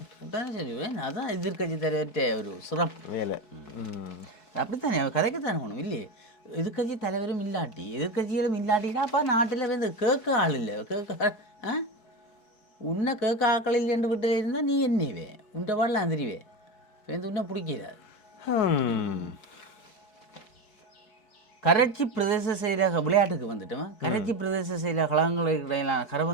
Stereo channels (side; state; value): right; late; 4.7 ms